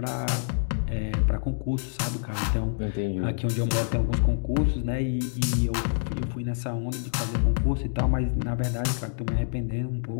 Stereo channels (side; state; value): right; silent; digital silence